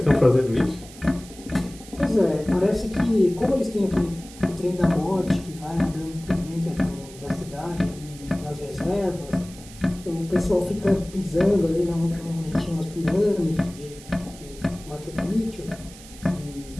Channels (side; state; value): right; noise; hiss, 19 dB below the sound